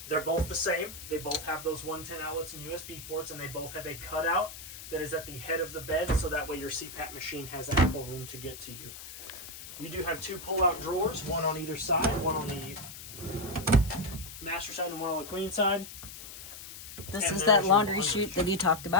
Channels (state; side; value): noise; left; hiss, 12 dB below the sound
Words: They're both the same. They both have those 110 outlets and USB ports, and they both have a cutout that is at the head of the bed, so that way your CPAP machine has ample room to get to you. You do have two pull-out drawers, one on either side, one on the master side and one on the queen side. This is that laundry chute that you talked